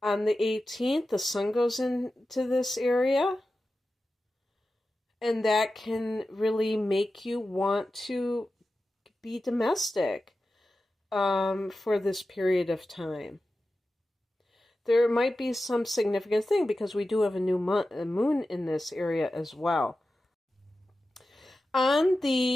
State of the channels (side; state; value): both; normal; correlation 0.93